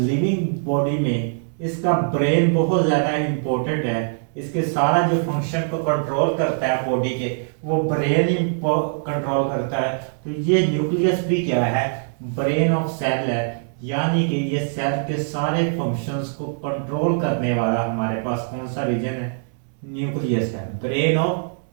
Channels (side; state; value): left; silent; 61 dB below the other